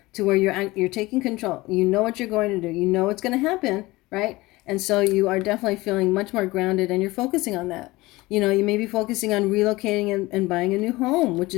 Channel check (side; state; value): right; quieter; 20.4 dB